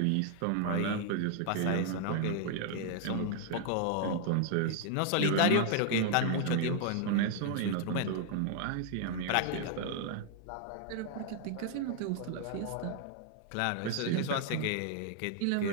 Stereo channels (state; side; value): different; both; correlation 0.00